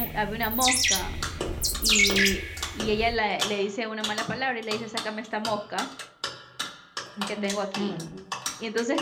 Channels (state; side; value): identical; both; correlation 1.00